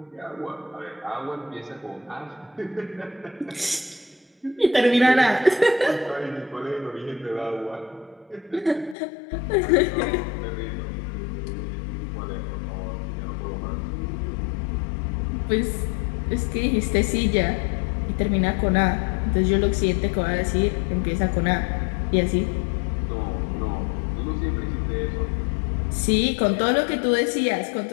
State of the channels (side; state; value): right; drops out; at 9.0 s